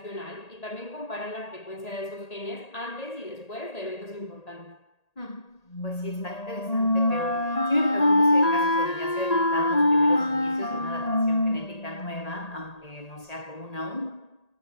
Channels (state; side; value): late; right; 1.8 ms